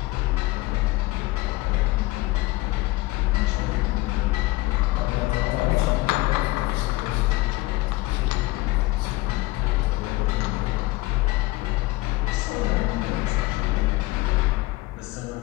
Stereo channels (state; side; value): quieter; right; 20.5 dB